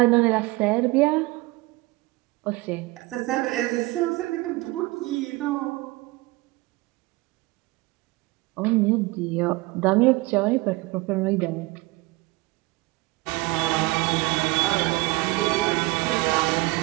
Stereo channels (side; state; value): left; quieter; 22.1 dB